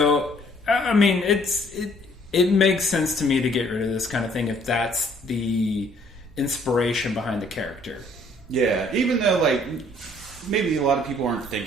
I mean, it makes sense to me to get rid of this kind of thing if that's the inspiration behind the character. Yeah, even though like maybe a lot of people aren't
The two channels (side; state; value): both; normal; correlation 0.61